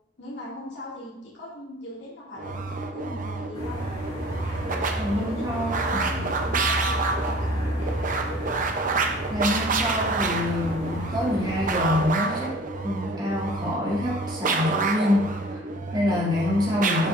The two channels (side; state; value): both; normal; correlation 0.48